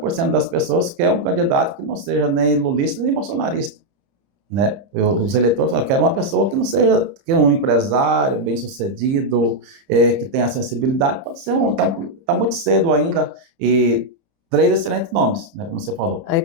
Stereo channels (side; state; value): left; late; 30 ms